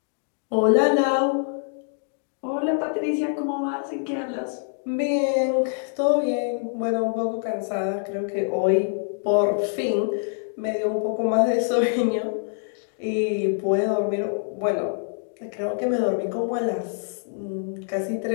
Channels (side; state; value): right; silent; digital silence